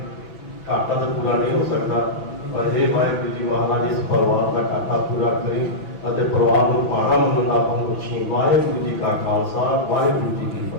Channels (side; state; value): right; late; 6.0 ms